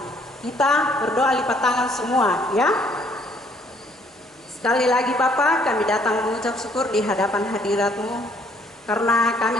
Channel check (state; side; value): normal; both; correlation 0.64